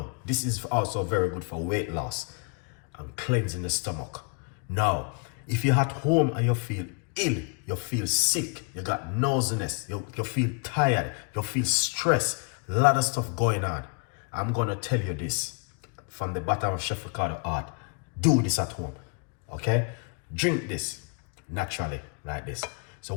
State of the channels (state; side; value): quieter; right; 36.5 dB